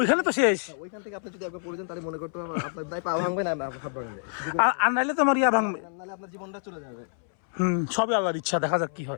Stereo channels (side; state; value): right; silent; 60 dB below the other